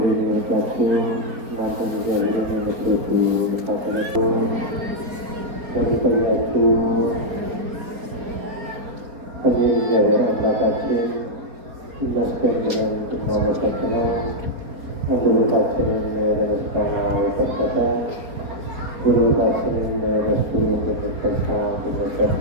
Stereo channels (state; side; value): late; left; 4.3 ms